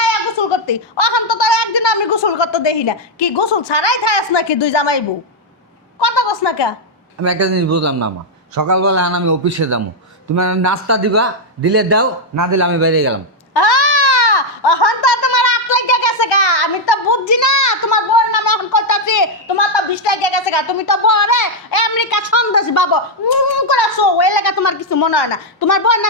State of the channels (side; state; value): both; normal; correlation -0.01